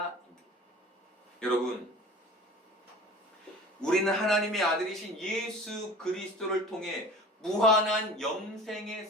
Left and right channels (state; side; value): normal; both; correlation 0.41